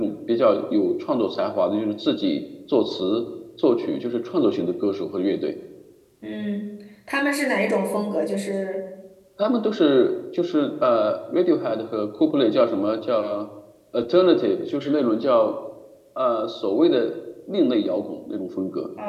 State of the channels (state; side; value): identical; both; correlation 1.00